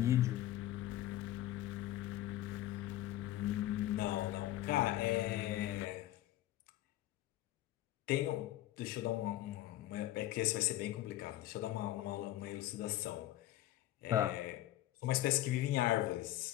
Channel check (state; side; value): quieter; right; 14.5 dB